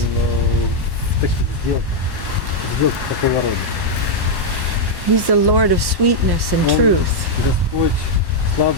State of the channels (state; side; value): late; left; 1.1 ms